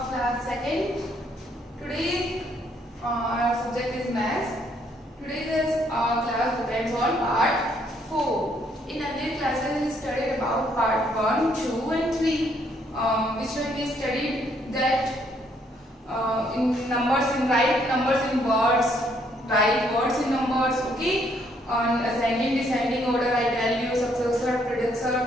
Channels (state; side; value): normal; both; correlation 0.69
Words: class 2nd. Today our subject is maths. Today's class depends on part 4. In earlier classes we studied about part 1, 2 and 3, which when we studied that in numbers, in write numbers in words, write words in numbers, okay? On ascending, descending order, I tell you successor, predecessor